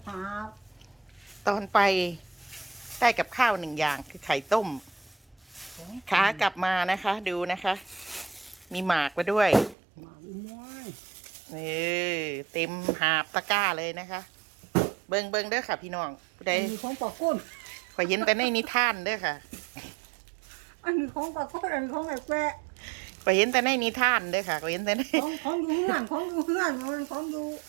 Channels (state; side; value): drops out; left; at 9.8 s